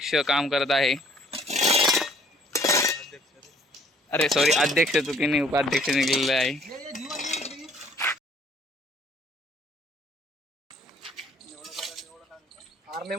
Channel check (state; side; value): normal; both; correlation 0.59